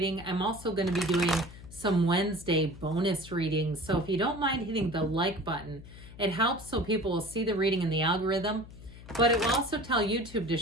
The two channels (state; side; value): noise; left; hum, 17 dB below the sound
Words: I'm also going to be doing some Wednesday bonus readings. So if you don't mind hitting the like button, it helps so people will see the reading in the algorithm. But it will also tell YouTube to